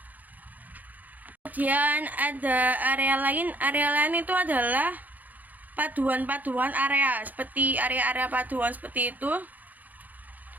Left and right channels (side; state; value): left; late; 0.082 ms